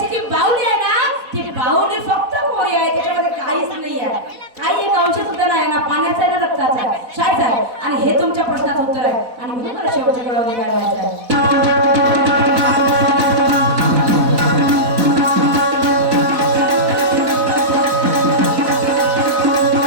जी बाहुली आहे ना ती बाहुली फक्त कोरी आहे. त्याच्यामध्ये काहीच नाही आहे. काही एक अंश सुद्धा नाही ना पाण्याचा आहे ना रक्ताचा आहे. शाळेत आहे आणि हे तुमच्या प्रश्नाचं उत्तर आहे आणि म्हणून मला शेवटच्या वेळेला काय व्हायचं आहे.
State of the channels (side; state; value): left; late; 4.1 ms